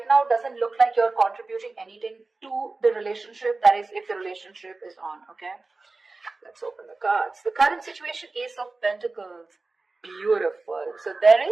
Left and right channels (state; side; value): quieter; left; 3.5 dB